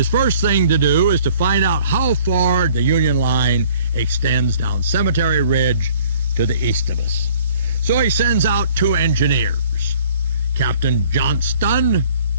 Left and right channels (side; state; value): both; inverted; correlation -0.55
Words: first thing to do is to find out how far the Union line extends down Cemetery Ridge to the east of us. So he sends out 2 engineers, Captain Johnston